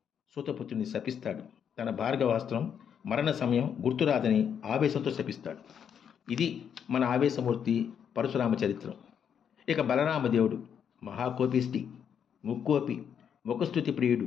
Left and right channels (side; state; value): right; quieter; 8.0 dB